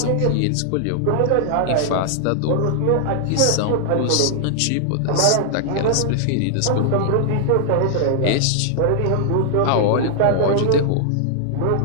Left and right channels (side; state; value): both; different; correlation -0.01